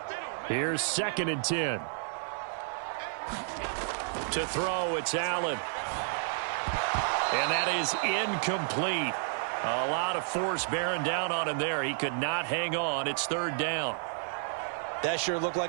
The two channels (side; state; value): left; silent; 57 dB below the other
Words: Here's 2nd and 10. To throw, it's Allen. And that is incomplete. A lot of force bearing down on him there. He could not hang on. It's 3rd down. That sure looked